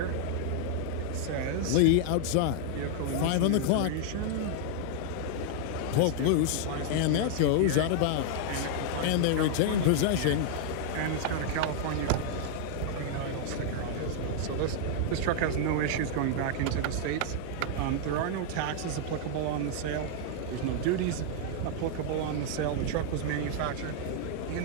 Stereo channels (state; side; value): different; both; correlation 0.00